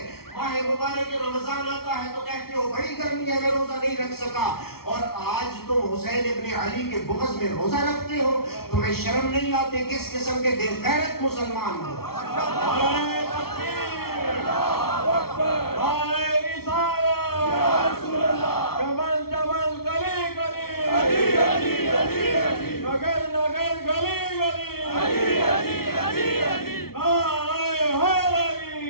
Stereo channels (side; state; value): right; late; 0.94 ms